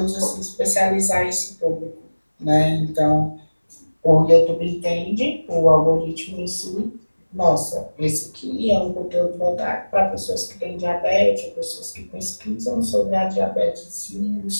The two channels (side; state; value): both; inverted; correlation -1.00